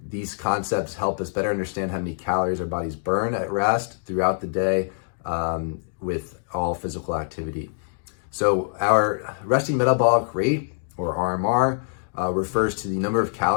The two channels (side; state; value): right; silent; digital silence